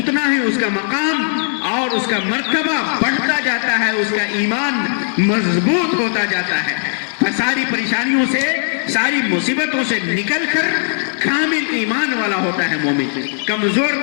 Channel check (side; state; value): right; silent; digital silence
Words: ہی اس کا مقام اور اس کا مرتبہ بڑھتا جاتا ہے، اس کا ایمان مضبوط ہوتا جاتا ہے. ساری پریشانیوں سے، ساری مصیبتوں سے نکل کر کامل ایمان والا ہوتا ہے مومن، کمزور